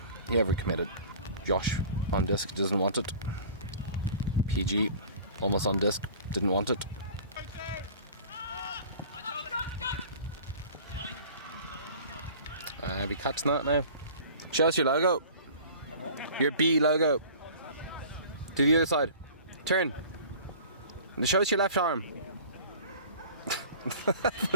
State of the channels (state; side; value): inverted; both; correlation -0.44